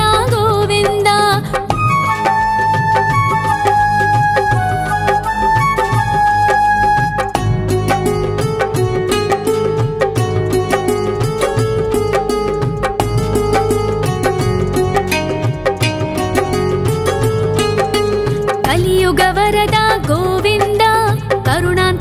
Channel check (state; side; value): identical; both; correlation 1.00